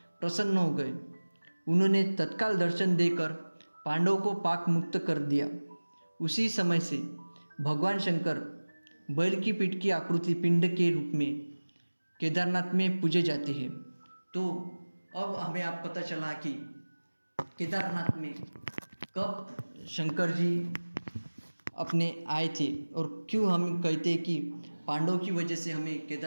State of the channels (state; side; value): inverted; both; correlation -1.00